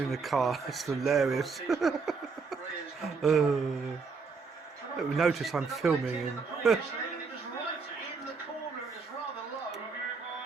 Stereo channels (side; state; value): left; quieter; 4.8 dB